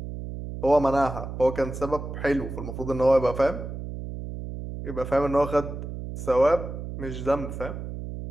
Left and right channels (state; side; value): noise; right; hum, 8 dB below the sound